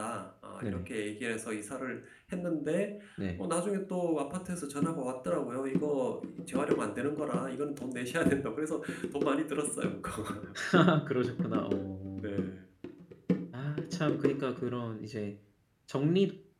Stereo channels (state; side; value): identical; both; correlation 1.00